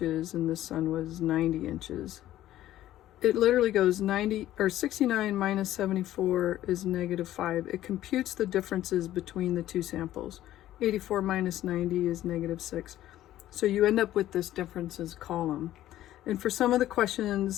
and this son was 90 inches. It literally goes 69 minus 74 is -5. It computes the differences between the 2 samples. 84 minus 90 is -6. So you end up with this differences column. And for some of the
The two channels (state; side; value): quieter; right; 13.6 dB